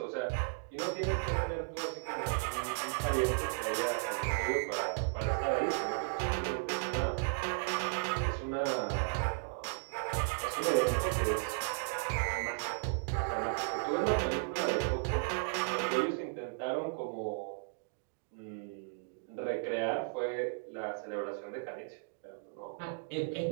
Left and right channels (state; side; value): silent; left; digital silence